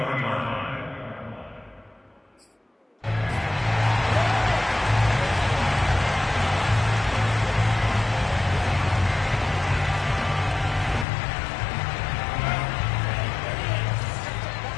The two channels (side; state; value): right; drops out; at 11.1 s